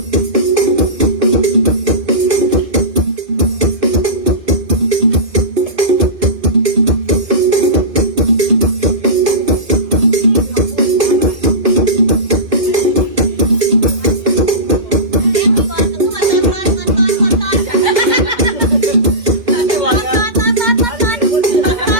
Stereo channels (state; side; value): late; left; 2.1 ms